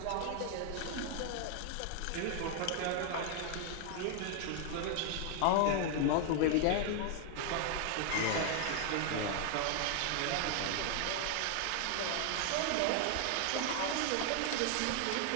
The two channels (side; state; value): both; different; correlation 0.00